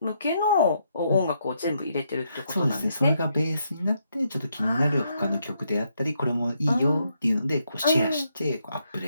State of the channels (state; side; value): inverted; both; correlation -0.77